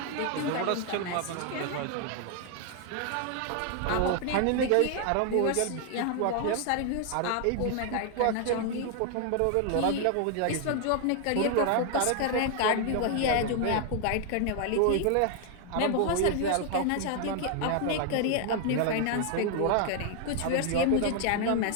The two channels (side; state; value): both; different; correlation 0.00